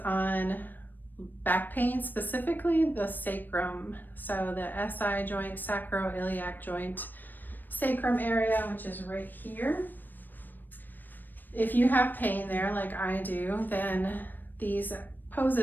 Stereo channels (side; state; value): right; late; 0.091 ms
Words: back pain, specifically the sacrum. So the SI joint, sacroiliac joint, sacrum area, which is right here. If you have pain there like I do, then these